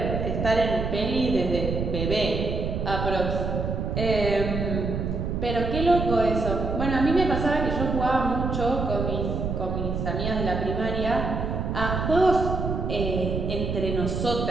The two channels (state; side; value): noise; right; rumble, 2 dB below the sound